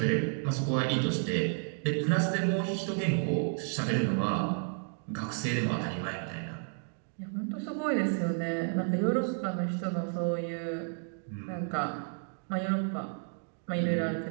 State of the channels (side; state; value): left; silent; 57 dB below the other